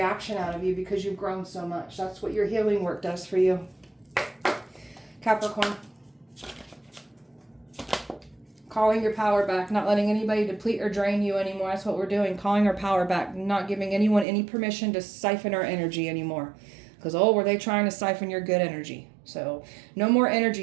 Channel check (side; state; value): left; drops out; at 14.2 s